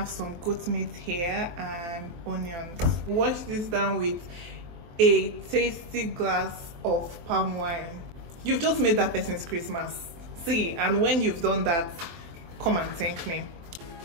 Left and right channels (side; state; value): left; late; 23 ms